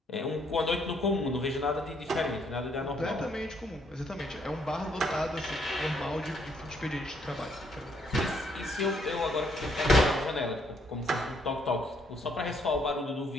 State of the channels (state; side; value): normal; both; correlation 0.70